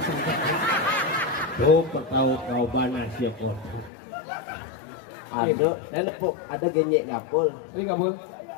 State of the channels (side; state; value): right; drops out; at 3.9 s